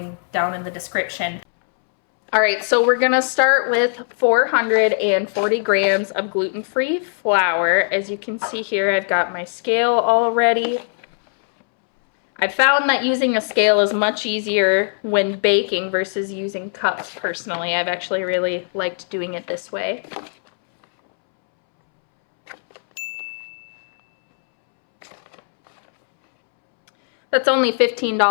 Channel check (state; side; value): silent; right; 66 dB below the other